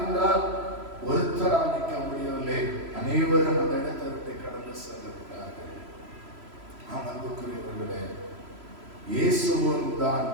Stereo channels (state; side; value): late; left; 3.0 ms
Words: ஒருத்தரால் நிற்க முடியவில்லை, அனைவரும் அந்த இடத்தை விட்டு கடந்து சென்றிருக்கிறார்கள். அன்புக்குரியவர்களே, இயேசுவும் தான்